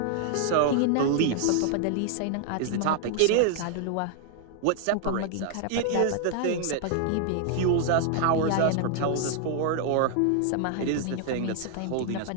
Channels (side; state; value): both; different; correlation 0.00